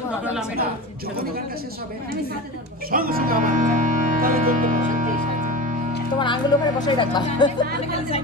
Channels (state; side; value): normal; both; correlation 0.28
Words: তাহলে আমি এটা যখন গানটা শেষ হবে আমি সাথে ধরবো সঙ্গে সঙ্গে আবার তাহলে ধরতে পারবে তোমার আঙ্গুল ওখানে বসাই রাখবা